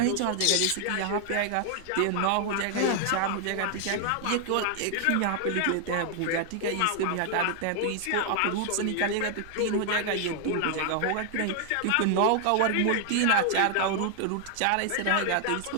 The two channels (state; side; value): different; both; correlation 0.00